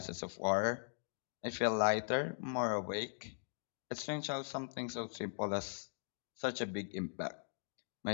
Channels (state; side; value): silent; right; digital silence